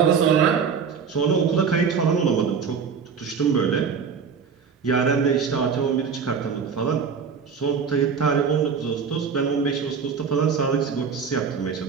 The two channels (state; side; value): quieter; left; 6.2 dB